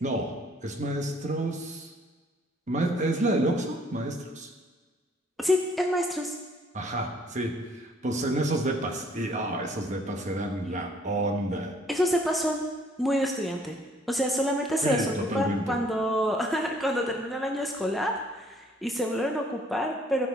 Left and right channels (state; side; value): normal; both; correlation 0.61